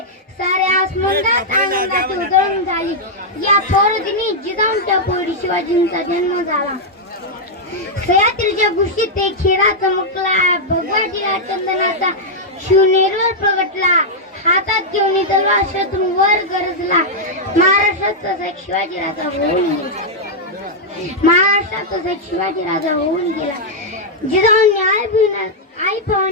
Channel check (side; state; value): both; normal; correlation -0.05